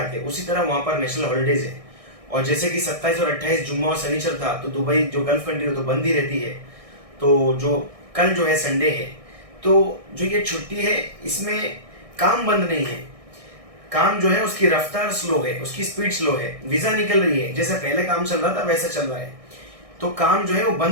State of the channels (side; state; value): left; late; 1.6 ms